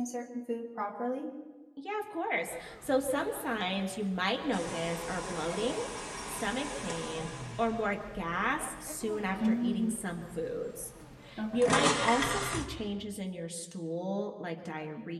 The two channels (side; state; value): both; identical; correlation 1.00